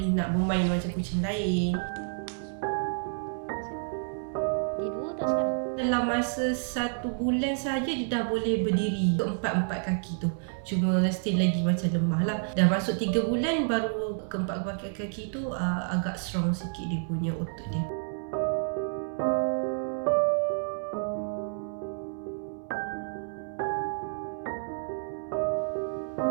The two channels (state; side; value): silent; left; 57 dB below the other